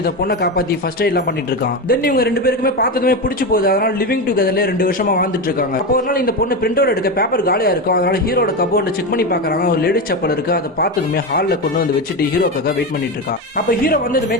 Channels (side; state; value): both; normal; correlation 0.16